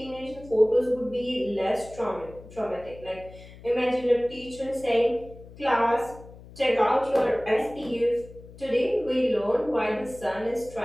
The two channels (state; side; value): noise; left; hum, 19 dB below the sound